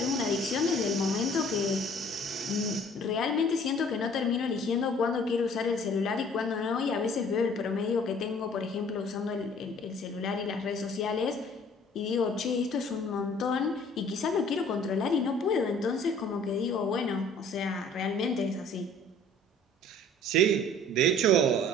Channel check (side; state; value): both; normal; correlation 0.53